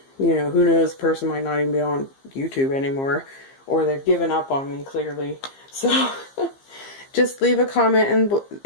know, who knows, the person might not even be on YouTube anymore, or they've given up on me, clearly. So just leave a comment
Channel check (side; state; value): right; late; 15 ms